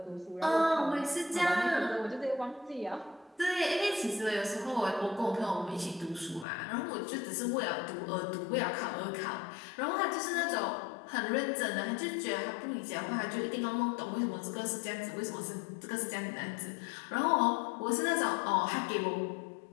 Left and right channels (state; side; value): drops out; right; at 6.5 s